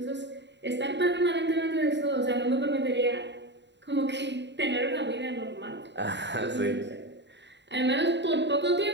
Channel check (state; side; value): late; left; 0.52 ms